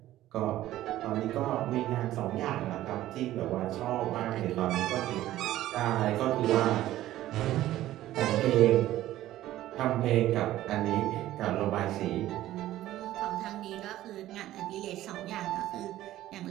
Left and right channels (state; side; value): quieter; left; 14.4 dB